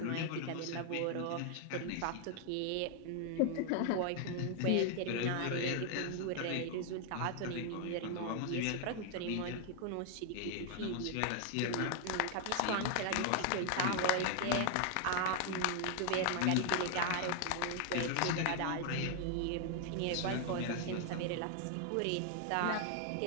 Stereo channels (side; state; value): both; different; correlation 0.00